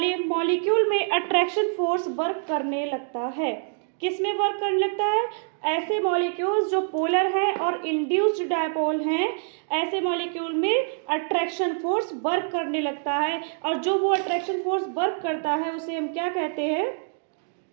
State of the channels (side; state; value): left; silent; digital silence